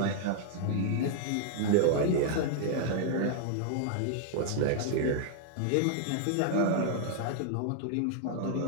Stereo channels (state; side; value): different; both; correlation -0.01